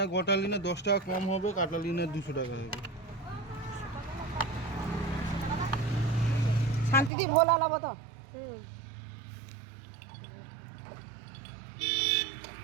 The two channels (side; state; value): left; drops out; at 7.1 s